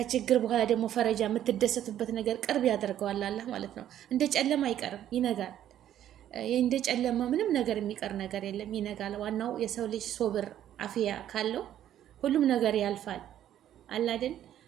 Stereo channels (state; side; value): quieter; left; 11.2 dB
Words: በኋላ ደግሞ ፈረጃ የምትደሰቱበት ነገር ቅርብ ያደርገዋል አላህ ማለት ነው። እንደ ጨለማ አይቀርም፣ ይነጋል። እንደ ጨለማ ምንም ነገር የሚቀር ነገር የለም፣ ይነጋል። ዋናው የሰው ልጅ ሶብር አፍያ ካለው ሁሉም ነገር ያልፋል አላድል።